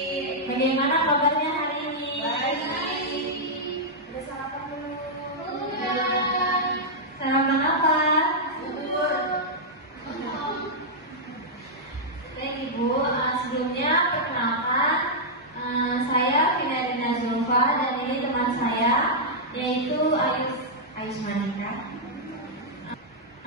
Bagaimana kabarnya hari ini? Baik. Udah sarapan belum? Sarapan apa? Bubur. Baik ibu, sebelumnya perkenalkan saya Finadina Zulfa dan ini teman saya yaitu Ayus Manika.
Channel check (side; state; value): both; normal; correlation -0.07